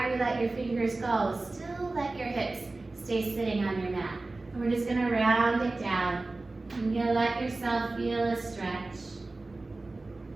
you let your fingers go, still let your hips stay sitting on your mat. And we're just going to round it down. And you'll let yourself feel a stretch.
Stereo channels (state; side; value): quieter; left; 3.2 dB